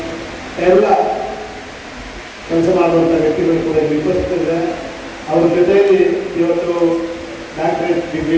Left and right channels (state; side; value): identical; both; correlation 1.00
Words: ಎಲ್ಲ ಕೆಲಸ ಮಾಡುವಂಥ ವ್ಯಕ್ತಿಗಳು ಕೂಡ ಉಪಸ್ಥಿತರಿದ್ದಾರೆ. ಅವ್ರ ಜೊತೆಯಲ್ಲಿ ಇವತ್ತು ಡಾಕ್ಟರೇಟ್